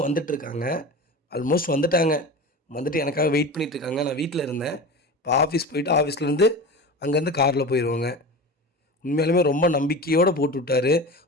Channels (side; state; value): both; normal; correlation 0.30